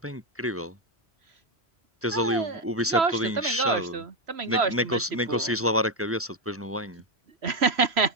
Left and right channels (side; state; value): both; normal; correlation 0.07